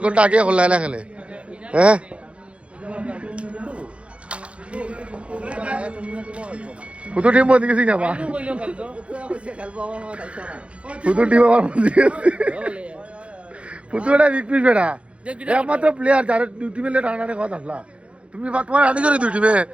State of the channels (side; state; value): left; late; 0.061 ms